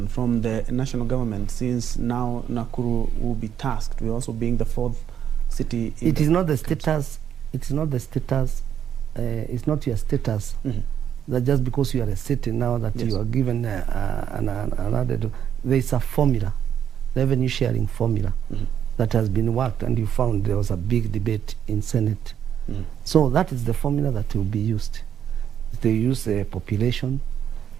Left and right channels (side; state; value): left; quieter; 9.1 dB